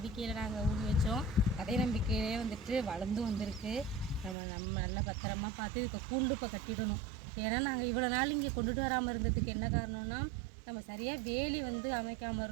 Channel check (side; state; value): left; drops out; at 4.4 s